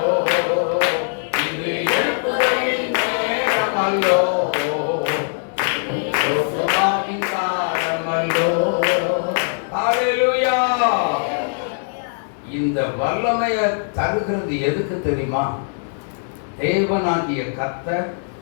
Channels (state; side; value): silent; right; 65 dB below the other